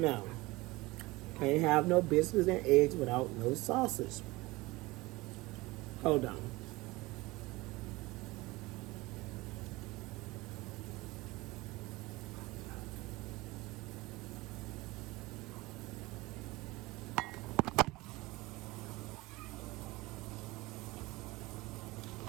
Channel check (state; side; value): quieter; left; 21.3 dB